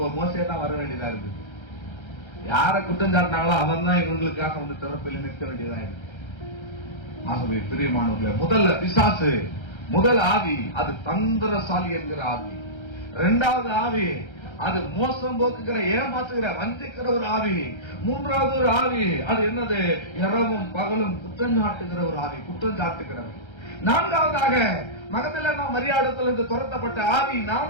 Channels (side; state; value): right; late; 1.3 ms